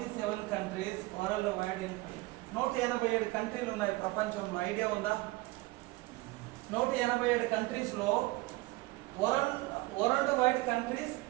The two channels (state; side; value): quieter; left; 21.2 dB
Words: countries world wide. 187 కంట్రీలు ఉన్నాయి ప్రపంచంలో. ఐడియా ఉందా? 187 కంట్రీస్లో world wide countries